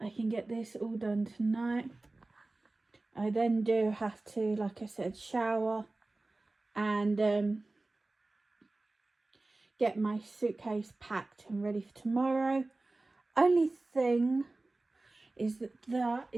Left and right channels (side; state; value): left; quieter; 3.1 dB